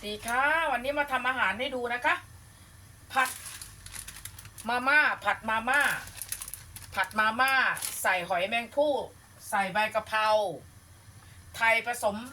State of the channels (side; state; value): both; identical; correlation 1.00